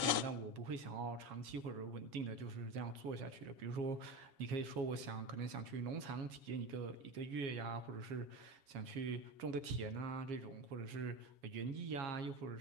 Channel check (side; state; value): left; late; 7.3 ms